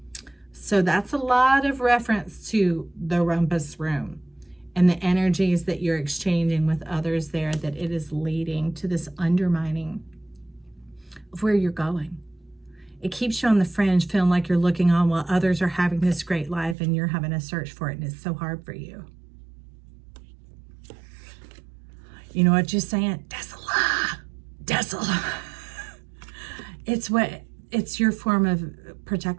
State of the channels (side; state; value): left; drops out; at 16.8 s